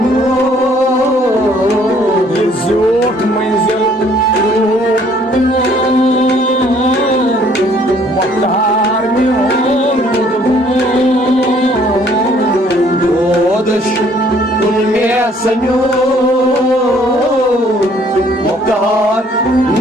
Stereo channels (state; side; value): normal; both; correlation 0.61